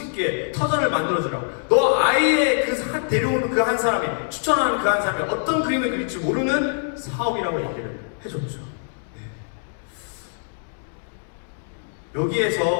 있게 터전을 만들어주라고. 너 아이의 데려오는 그 한 사람이, 추천하는 그 한 사람이 어떤 그림을 그릴지 모르는 사업이라고 얘기를 해줬죠. 네.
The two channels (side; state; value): right; silent; 63 dB below the other